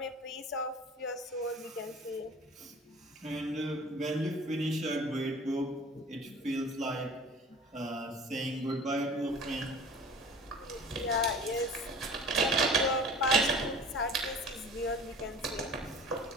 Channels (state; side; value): normal; both; correlation 0.43